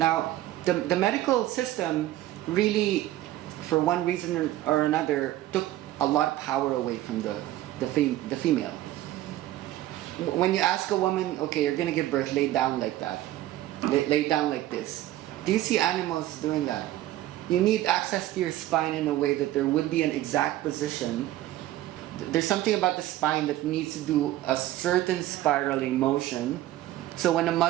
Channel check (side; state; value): left; quieter; 14.7 dB